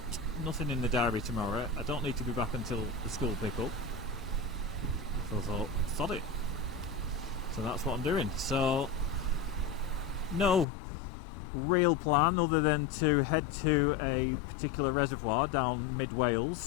nothing in the diary tomorrow. I don't need to be back until the school pick up, so I thought, sod it. So that's what I'm doing. So no real plan other than to head to a particular reservoir down mid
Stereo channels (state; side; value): drops out; right; at 10.7 s